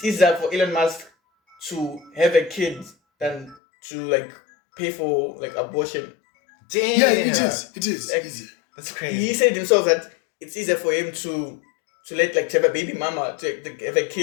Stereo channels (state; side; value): drops out; right; at 3.6 s